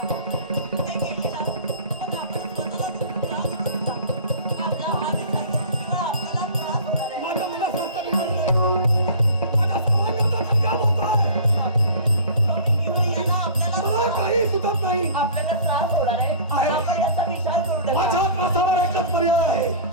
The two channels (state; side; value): inverted; both; correlation -0.42